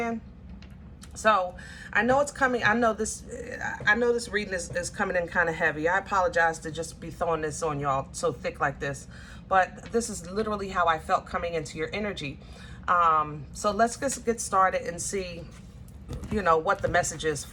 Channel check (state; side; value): identical; both; correlation 1.00